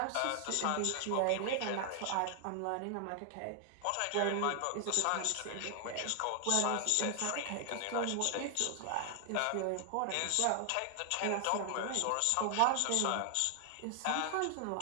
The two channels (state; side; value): different; both; correlation 0.00